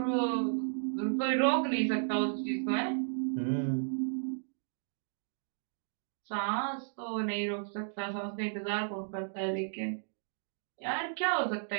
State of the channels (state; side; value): silent; left; digital silence